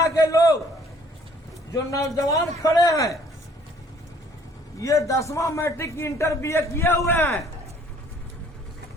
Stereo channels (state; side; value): normal; both; correlation 0.58